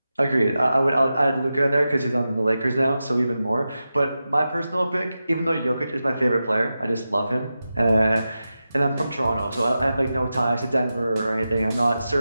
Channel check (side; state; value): both; inverted; correlation -0.92